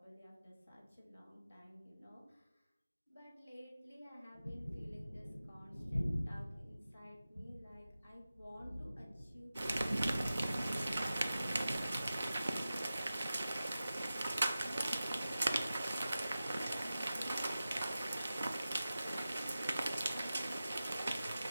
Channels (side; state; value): both; inverted; correlation -0.94